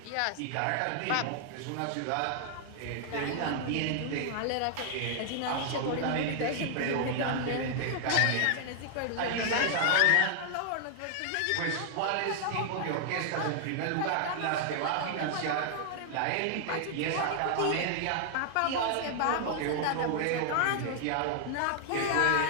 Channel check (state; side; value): different; both; correlation 0.00